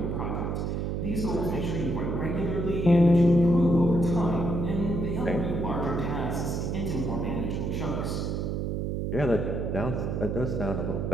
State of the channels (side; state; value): right; noise; hum, 1 dB below the sound